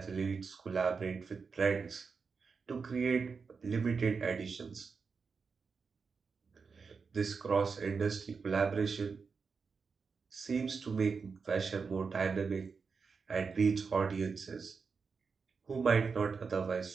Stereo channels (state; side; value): quieter; left; 5.2 dB